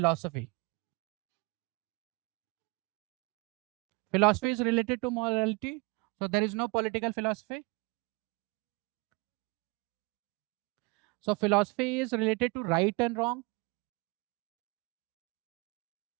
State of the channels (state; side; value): quieter; left; 27.4 dB